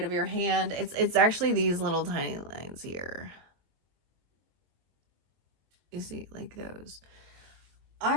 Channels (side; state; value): left; late; 22 ms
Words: of your hand. It's actually these little tiny lines here. You see, like those.